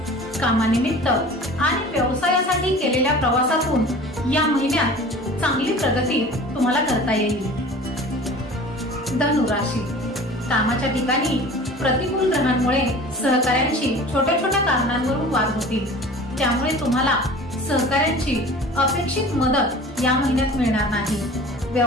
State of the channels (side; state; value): both; normal; correlation 0.41